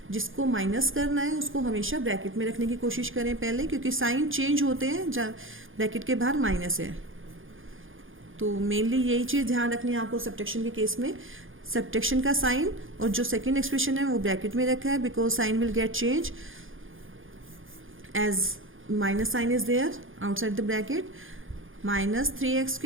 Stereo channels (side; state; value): left; late; 0.58 ms